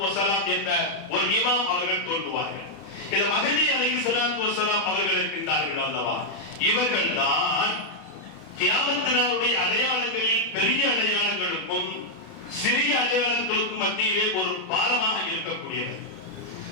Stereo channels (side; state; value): right; late; 31 ms